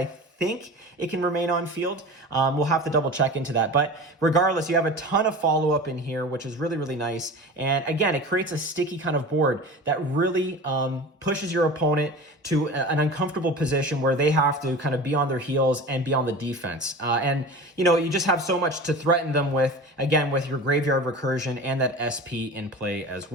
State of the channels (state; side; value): normal; both; correlation 0.35